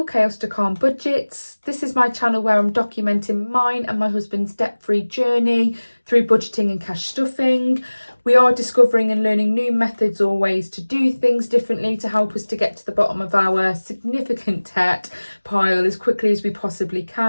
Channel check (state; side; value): inverted; both; correlation -1.00